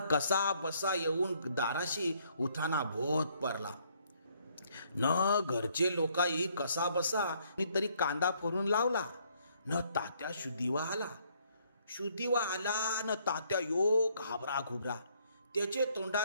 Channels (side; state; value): both; inverted; correlation -0.67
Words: कसा बसा येऊन दाराशी उठाना भोत पडला न. घरचे लोकाही कसा बसा तरी कांदा फोडून लावला न. तात्या शुद्धीवा आला न. तात्या यो घाबरा घुबरा. त्याचे